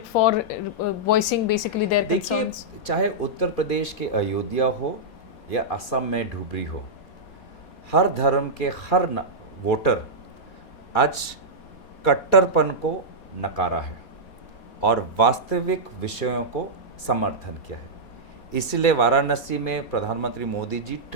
for voicing basically their concerns? देखिए, चाहे उत्तर प्रदेश के अयोध्या हो या असम में धुबरी हो, हर धर्म के हर वोटर आज कट्टरपन को नकारा है और वास्तविक विषयों को समर्थन किया है। इसलिए वाराणसी में प्रधानमंत्री मोदी जी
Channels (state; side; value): late; right; 4.2 ms